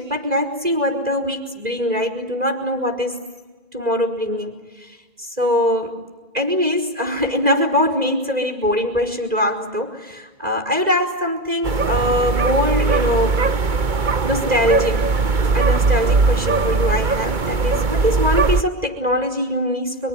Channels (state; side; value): late; left; 2.0 ms